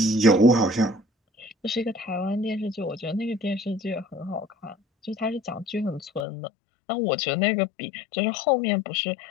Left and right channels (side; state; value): right; drops out; at 6.2 s